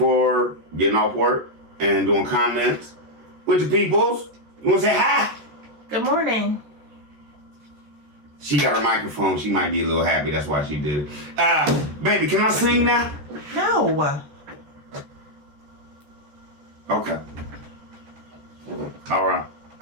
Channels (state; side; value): late; left; 14 ms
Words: getting off work and doing comments with the peoples. You want to say hi? Good morning. She got her microphone. She might be a little happy. That's why she did it. Baby, can I sing now? No. Okay. All right.